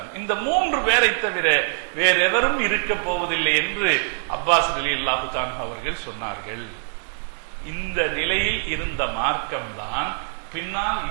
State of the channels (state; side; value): silent; left; 55 dB below the other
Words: இந்த 3 பேரை தவிர வேறு எவரும் இருக்க போவதில்லை என்று அப்பாஸ் ரலியல்லாஹு தஆலா அவர்கள் சொன்னார்கள். இந்த நிலையில் இருந்த மார்க்கம் தான் பின்னால்